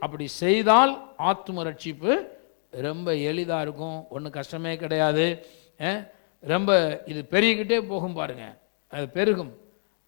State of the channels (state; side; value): silent; right; digital silence